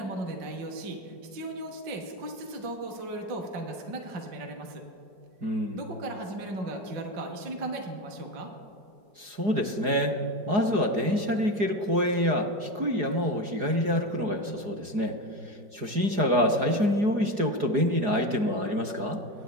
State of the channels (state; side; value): late; left; 4.8 ms